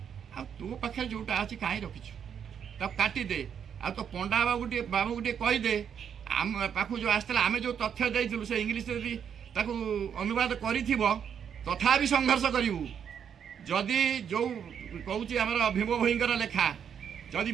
ଆଉ ତୋ ପାଖରେ ଯେଉଁଟା ଅଛି କାହିଁ ରଖିଛୁ ତାକୁ କାଟିଦେ। ଆଉ ତୋ ପଣ୍ଡା ବାବୁକୁ ଟିକେ କହିଦେ, ଆମ ପାଖକୁ ଯେଉଁ ଆସିଥିଲା ଆମେ ଯେଉଁ ତଥ୍ୟ ଦେଇଥିଲୁ ସେ ଇଂଲିଶରେ ଯଦି ତାକୁ ଅନୁବାଦ କରିଥିବ, ତଥାପି ସଂଘର୍ଷ କରିବୁ। ଯଦି ଯେଉଁ କହୁଛି ଆମର ଭୀମ ଭୋଇଙ୍କର ଲେଖା, ଯଦି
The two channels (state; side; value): quieter; left; 8.0 dB